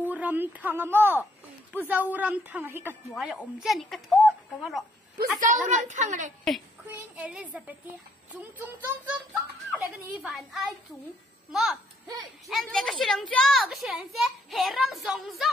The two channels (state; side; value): normal; both; correlation 0.68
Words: râm thằng à mò bu dâu râm thằng hay cắt hóa là ôm chân cái thốt cái mà đó bu dâu râm thằng này Queen Elizabeth chúng là cái gì phản ai chúng mà em thấy cái chuyện chưa cái chuyện sẽ hệ ram rong